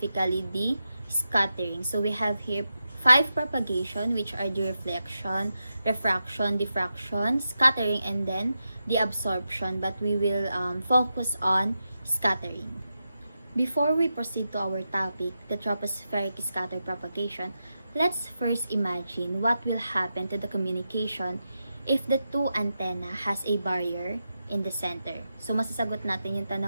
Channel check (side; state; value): both; inverted; correlation -0.89